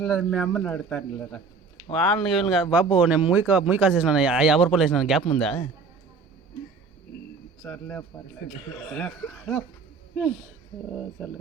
మీ అమ్మని అడుగుతాను లేదా వాళ్ళని వీళ్ళని కాదు బాబు. నేను మూయి కాసేసినాను 50 రూపాయలు వేసినాను. గ్యాప్ ఉందా? సర్లే పర్లేదు. సర్లే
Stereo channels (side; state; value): left; quieter; 4.7 dB